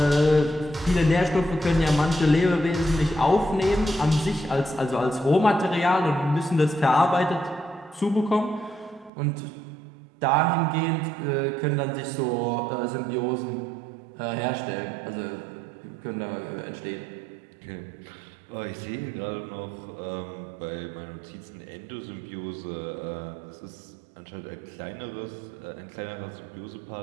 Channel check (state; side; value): drops out; left; at 9.1 s